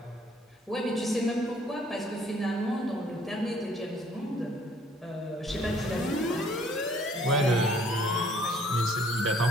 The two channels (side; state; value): both; normal; correlation 0.60